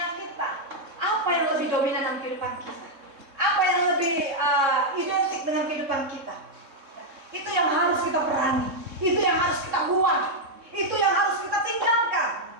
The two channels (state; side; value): late; left; 3.6 ms